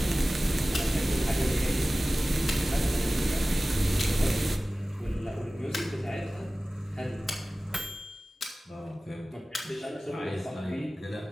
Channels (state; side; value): normal; both; correlation 0.97